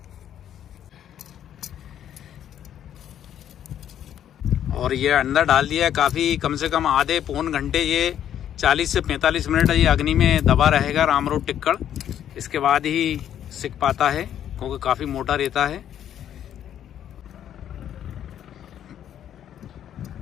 और ये अंदर डाल दिया है, काफी कम से कम आधे पौन घंटे, ये 40 से 45 मिनट ये अग्नि में दबा रहेगा रामरोड टिक्कड़। इसके बाद ही सिक पाता है, क्योंकि काफी मोटा रहता है।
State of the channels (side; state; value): right; quieter; 10.3 dB